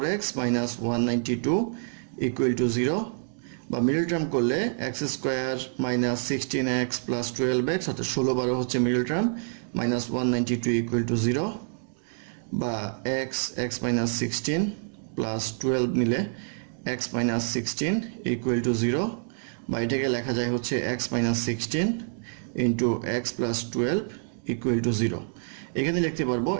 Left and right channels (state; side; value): silent; left; digital silence